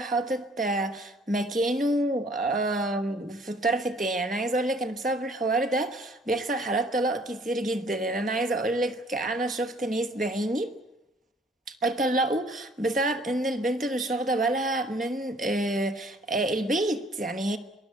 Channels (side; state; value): both; normal; correlation 0.58